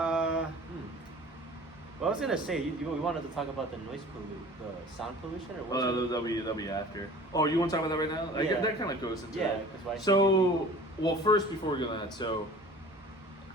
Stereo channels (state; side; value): normal; both; correlation 0.44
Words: Well, I was gonna say we wanted to talk about the the sound pollution, or what? That'll be after. Oh, you want to talk about that right now? Yeah. That kind of goes into it. Because first before we go to that, so